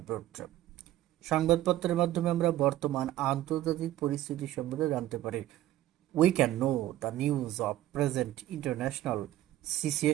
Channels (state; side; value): quieter; left; 14.1 dB